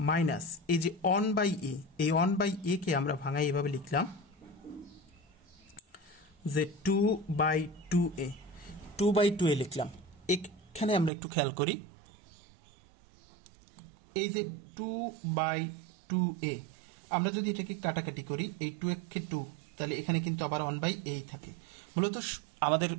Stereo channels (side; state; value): left; drops out; at 11.1 s